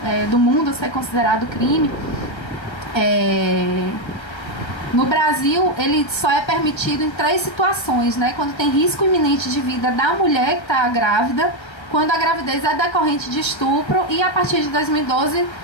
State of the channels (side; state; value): right; late; 1.3 ms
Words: do mundo ser considerado crime, no Brasil ele só é permitido em 3 situações, né? Quando tem risco iminente de vida da mulher que está grávida, quando a gravidez é decorrente de estupro, e a partir de 2012